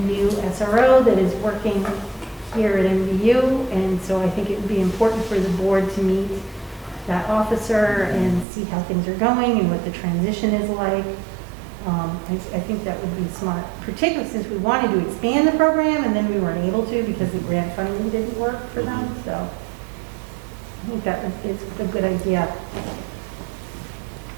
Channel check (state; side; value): drops out; left; at 8.5 s